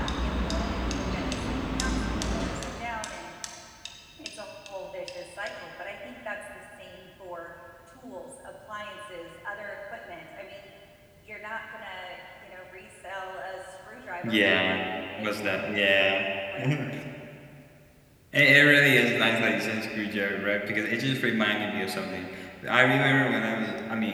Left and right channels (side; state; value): both; identical; correlation 1.00